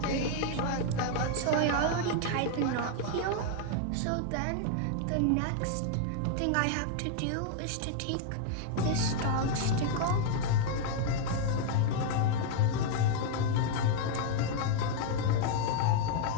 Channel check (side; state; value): both; different; correlation 0.00